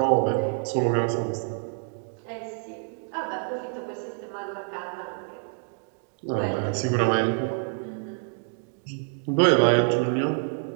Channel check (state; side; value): silent; left; 58 dB below the other